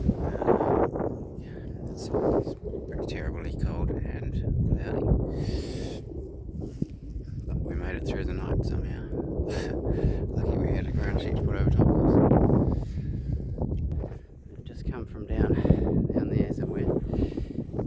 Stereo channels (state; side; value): identical; both; correlation 1.00